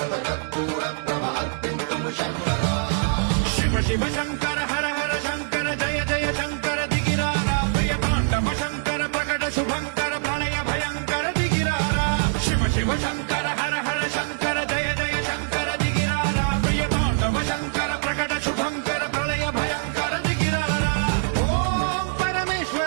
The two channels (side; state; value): left; silent; 63 dB below the other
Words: కర్పూర ప్రభ అర్పింతుము శంకరా శివ శివ శంకర